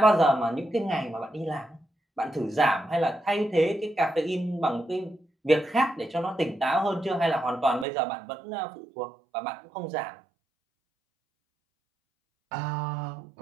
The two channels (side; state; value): left; drops out; at 7.9 s